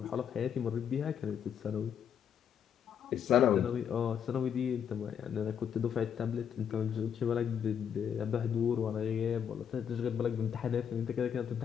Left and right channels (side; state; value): right; quieter; 8.2 dB